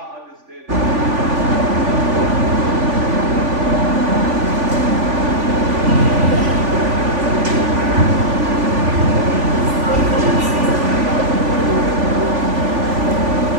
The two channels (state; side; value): late; left; 3.5 ms